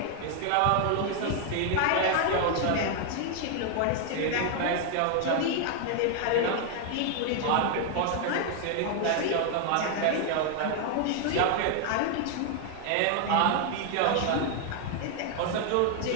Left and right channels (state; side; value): different; both; correlation 0.00